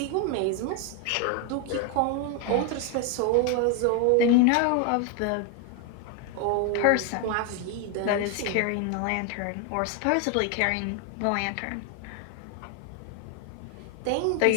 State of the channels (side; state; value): both; different; correlation 0.01